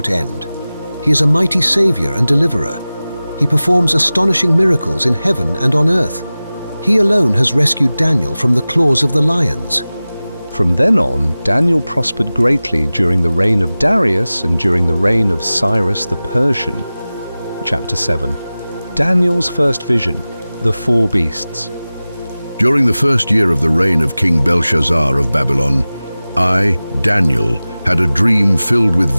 end. He is a mighty Savior and Deliverer. He performs astonishing miracles in heaven and on earth. He alone has rescued Daniel from the claws of the lions. From then on, Daniel prospered greatly during the reign of Darius and during the reign of Cyrus the Persian. Chapter 7. Daniel's first vision, the 4 beasts. During the first year of the reign of King Belshazzar of Babylon, I, Daniel, had a dream filled with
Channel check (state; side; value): inverted; both; correlation -0.97